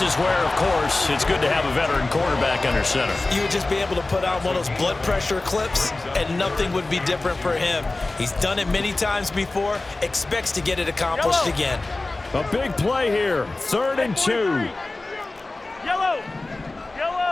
is where, of course, it's good to have a veteran quarterback under center. You would just be able to put on one of those blood pressure clips, and nothing would be different for him. He's done it many times before, expects to get it accomplished again. A big play here. 3rd and 2. Yellow.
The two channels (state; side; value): quieter; right; 3.1 dB